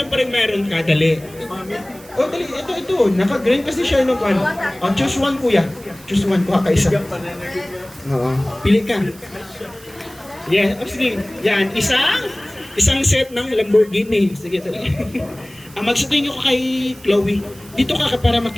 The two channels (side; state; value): right; noise; hiss, 23 dB below the sound